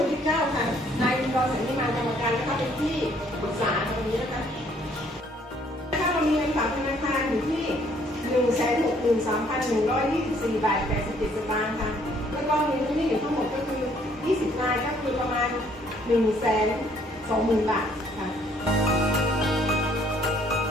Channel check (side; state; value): both; normal; correlation 0.63